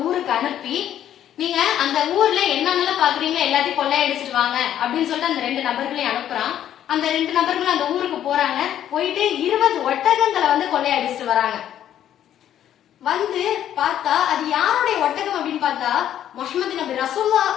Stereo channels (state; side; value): quieter; right; 10.8 dB